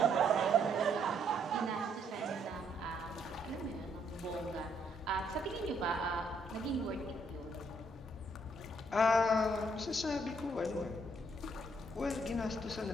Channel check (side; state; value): both; normal; correlation 0.71